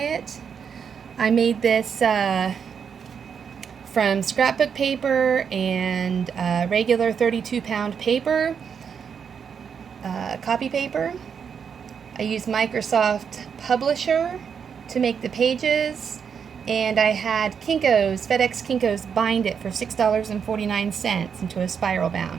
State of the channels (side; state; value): left; quieter; 6.9 dB